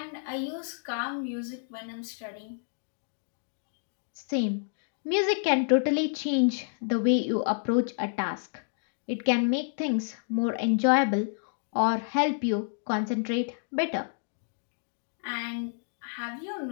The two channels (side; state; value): right; silent; digital silence